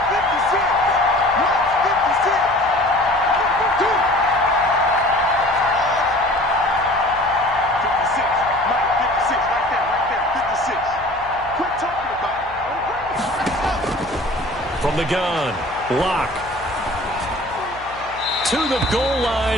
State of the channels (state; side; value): noise; left; hum, 20 dB below the sound